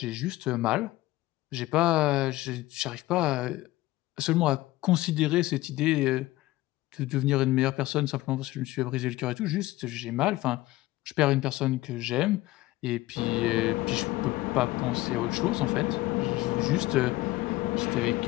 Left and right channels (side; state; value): right; quieter; 18.1 dB